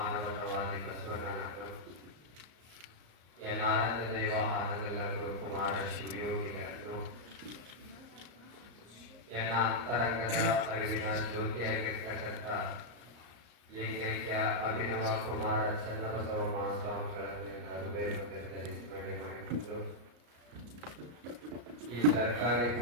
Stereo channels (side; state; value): left; late; 34 ms